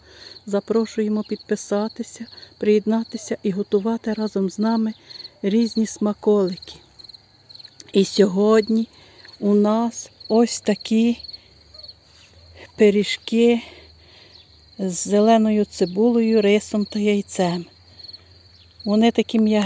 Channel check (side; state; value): both; identical; correlation 1.00